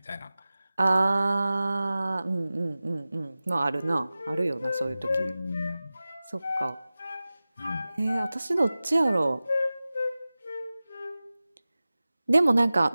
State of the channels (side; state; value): both; inverted; correlation -0.96